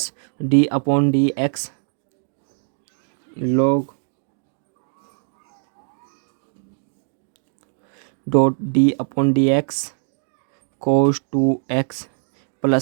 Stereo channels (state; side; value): silent; left; 59 dB below the other